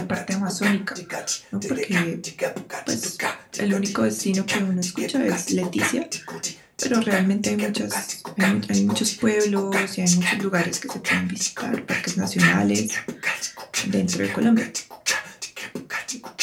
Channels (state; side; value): identical; both; correlation 1.00